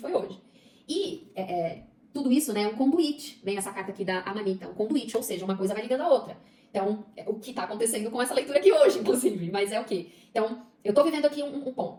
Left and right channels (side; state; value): both; identical; correlation 1.00